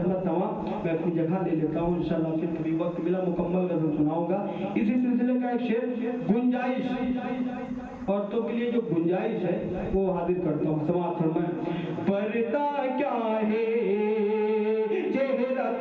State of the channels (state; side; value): identical; both; correlation 1.00